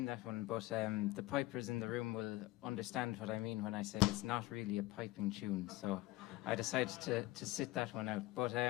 that one, but the pipers in the room will understand what I mean when I say it's not really a piping tune, so I decided to sit that one out. But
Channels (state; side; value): quieter; right; 18.2 dB